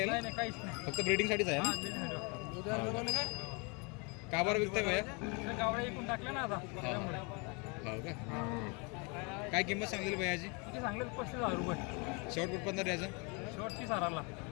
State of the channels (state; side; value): quieter; right; 31.7 dB